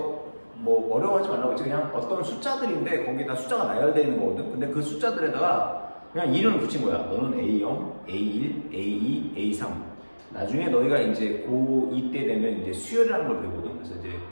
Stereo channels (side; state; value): both; inverted; correlation -1.00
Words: 어려워하지 말라고 했지. 그냥 어떤 숫자들인데, 거기다 숫자가 나열되어 있는 거거든. 근데 그 숫자들에다가 그냥 이름을 붙인 거야. 너는 A0, A1, A2, A3. 나중에 너희가 이제 고2 때 되면 이제 수열이라는 걸 배우거든. 그래서 이제